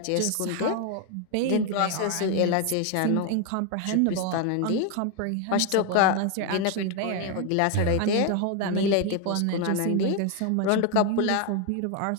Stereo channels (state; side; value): different; both; correlation 0.01